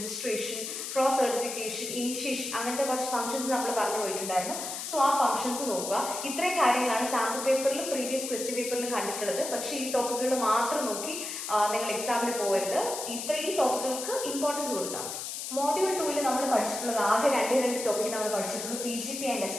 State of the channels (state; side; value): noise; left; hiss, 6 dB below the sound